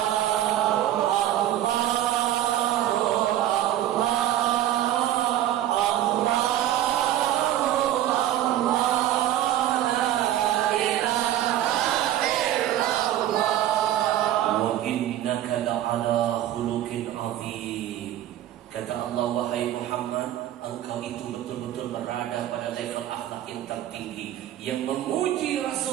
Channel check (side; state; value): left; quieter; 12.5 dB